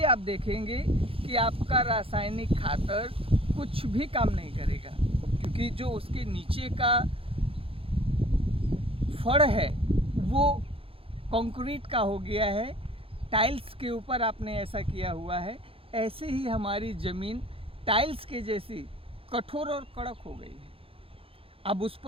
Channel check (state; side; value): late; left; 0.27 ms